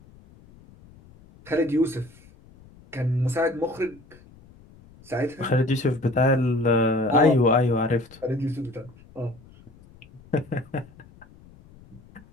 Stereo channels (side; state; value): left; noise; rumble, 24 dB below the sound